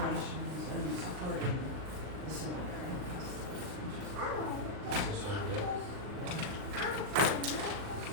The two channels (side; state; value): left; late; 39 ms